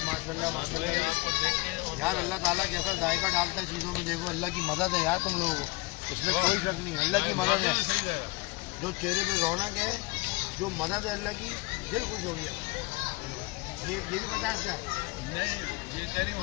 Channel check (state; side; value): quieter; right; 24.2 dB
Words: माशाल्लाह माशाल्लाह। आपको देख के और यार अल्लाह ताला कैसा जायका डालता है चीज़ों में, देखो अल्लाह की मदद है यार तुम लोगों को, इसमें कोई शक नहीं, अल्लाह की मदद है। सही है। जो चेहरे पे रौनक है, जो मदद है अल्लाह की, दिल खुश हो गया। ये भी 50 का है, नहीं ये तेरी